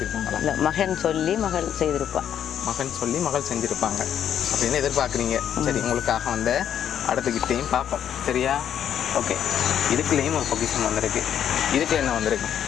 மகன் சொல்லி மகள் செஞ்சுருப்பாங்க அப்படின்னு எதிர்பார்க்குறீங்க. சரி, உங்களுக்காக வந்த அடுத்த கிஃப்டையும் பார்ப்போம். சரியா? ஓகே, இதுக்குள்ளேயும் ஒரு பொக்கிஷன் வந்திருக்கு. இதுக்கு என்ன வந்திருக்கு?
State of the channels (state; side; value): quieter; right; 9.5 dB